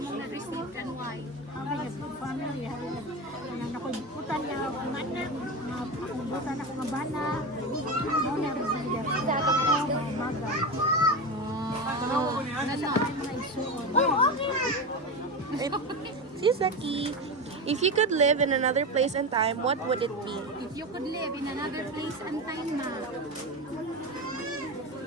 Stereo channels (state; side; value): normal; both; correlation 0.20